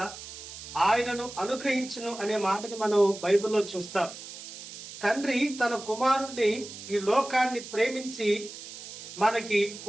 ఆయనను అనుగ్రహించును అనే మాటని మనం బైబిల్లో చూస్తాం. తండ్రి తన కుమారుణ్ణి ఈ లోకాన్ని ప్రేమించి మనకి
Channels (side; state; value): right; noise; hiss, 13 dB below the sound